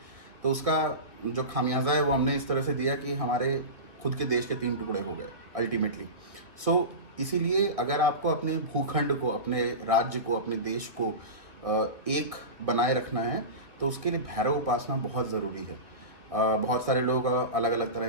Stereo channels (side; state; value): left; late; 1.8 ms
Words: तो उसका जो खामियाजा है वो हमने इस तरह से दिया कि हमारे खुद के देश के 3 टुकड़े हो गए अल्टीमेटली। इसीलिए अगर आपको अपने भूखंड को, अपने राज्य को, अपने देश को एक बनाए रखना है तो उसके लिए भैरव उपासना बहुत ज़रूरी है। बहुत सारे लोग अलग अलग